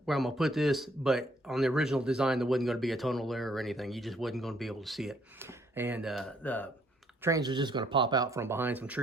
where I'm going to put this. But on the original design, there wasn't going to be a tunnel there or anything. You just wasn't going to be able to see it. And the trains are just going to pop out from behind some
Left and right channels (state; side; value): normal; both; correlation 0.66